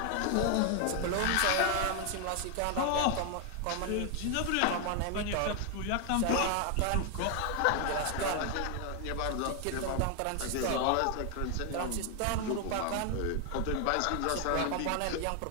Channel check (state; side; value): different; both; correlation 0.00